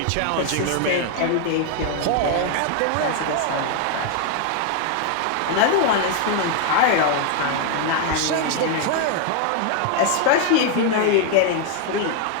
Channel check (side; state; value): both; different; correlation 0.00